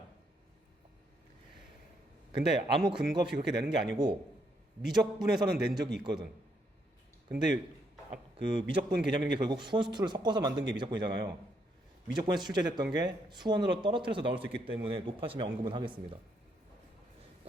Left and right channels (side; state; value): both; normal; correlation 0.75